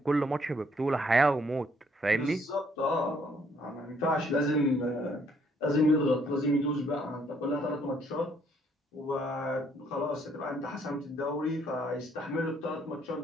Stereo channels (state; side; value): normal; both; correlation 0.67